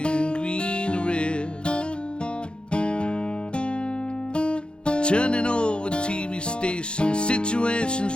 green to red. Turning over TV stations, situations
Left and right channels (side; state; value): right; late; 0.054 ms